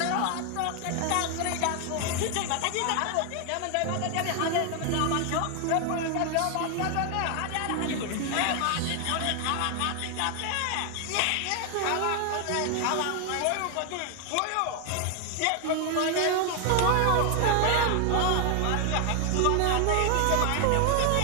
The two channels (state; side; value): different; both; correlation 0.00